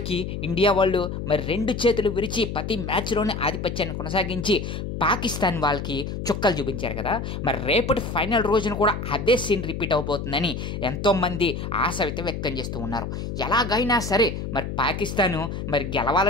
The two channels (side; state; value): left; noise; hum, 5 dB below the sound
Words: ఇండియా వాళ్ళు మరి 2 చేతులు విరిచి ప్రతి మ్యాచ్లోనే ఆధిపత్యాన్ని కొనసాగించి పాకిస్తాన్ వాళ్ళకి చుక్కలు చూపించారు కదా. మరి రేపటి ఫైనల్ రోజున కూడా అదే సీన్ రిపీట్ అవబోతుందని ఎంతోమంది ఆశ అయితే వ్యక్తం చేస్తూ ఉన్నారు. ఎలాగైనా సరే మరి పాకిస్తాను మరి